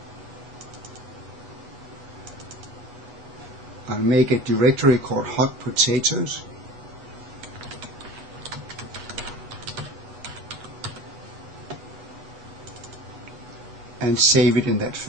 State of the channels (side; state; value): left; late; 8.4 ms